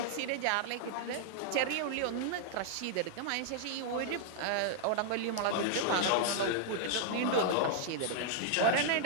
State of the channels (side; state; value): both; different; correlation -0.01